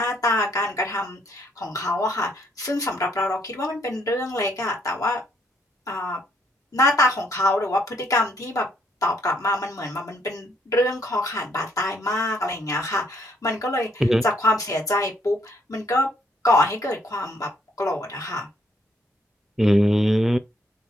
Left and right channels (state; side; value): normal; both; correlation 0.70